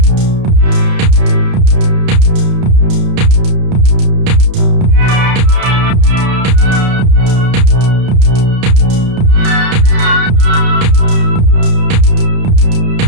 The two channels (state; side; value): late; left; 31 ms